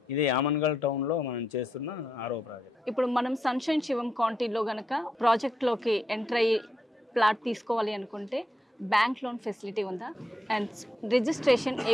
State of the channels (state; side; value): normal; both; correlation 0.82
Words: ఇది ఆమన్గల్ టౌన్లో మనం చేస్తున్న 6వ ప్రాజెక్ట్. ఇప్పుడు మనం సన్షైన్ శివం కౌంటీలో కనుక ప్రాజెక్ట్లోకి ఎంటర్ అయ్యి ప్లాట్ తీసుకోవాలి అనుకుంటే బ్యాంక్ లోన్ ఫెసిలిటీ ఉందా? అండ్ రిజిస్ట్రేషన్ ఏ